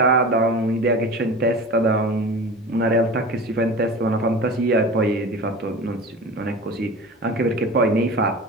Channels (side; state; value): both; normal; correlation 0.34